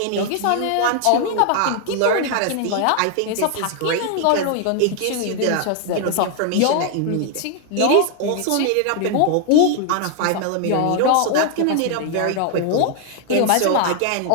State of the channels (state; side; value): different; both; correlation 0.00